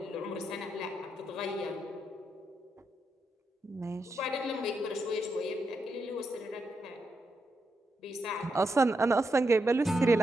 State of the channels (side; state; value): both; normal; correlation 0.83